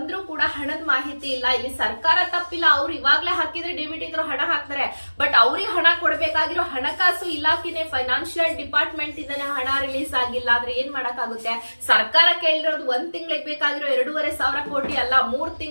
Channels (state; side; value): inverted; both; correlation -1.00